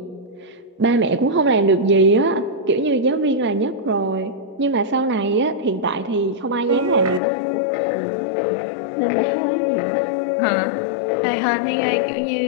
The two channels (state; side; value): drops out; right; at 7.2 s